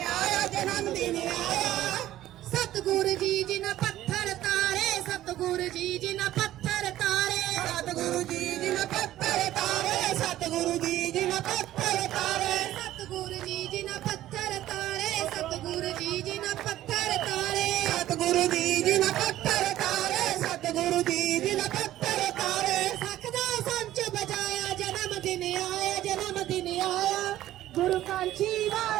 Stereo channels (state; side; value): quieter; left; 13.9 dB